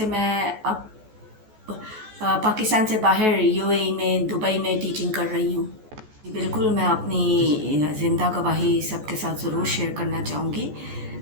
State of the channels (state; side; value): late; left; 14 ms